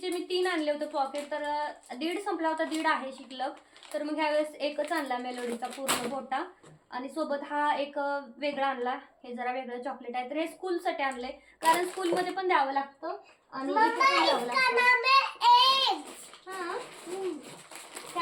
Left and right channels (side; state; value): both; identical; correlation 1.00